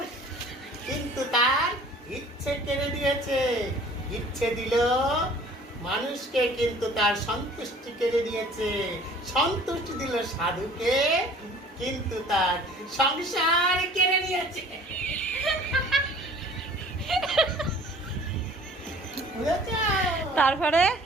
কিন্তু তার ইচ্ছে কেড়ে দিয়েছে। ইচ্ছে দিল মানুষকে কিন্তু তার সন্তুষ্টি কেড়ে দিয়েছে। সন্তুষ্টি দিল সাধুকে কিন্তু তার সংসার কেড়ে নিয়েছে। তারপরে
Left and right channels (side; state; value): both; normal; correlation 0.50